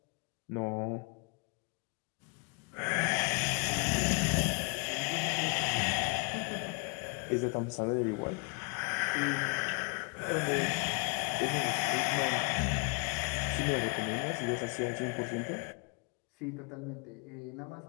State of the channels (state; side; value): quieter; right; 35.0 dB